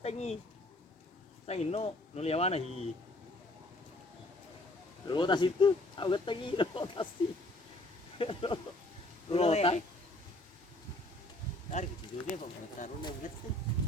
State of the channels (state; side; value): normal; both; correlation 0.56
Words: nih. Saya no liawana hi. Rotas itu, aku getek nih rotasi. Rotas. Tarik itu dia Pak, taruh nang getek.